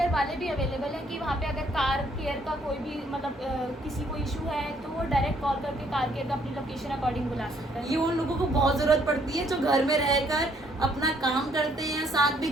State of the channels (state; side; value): normal; both; correlation 0.67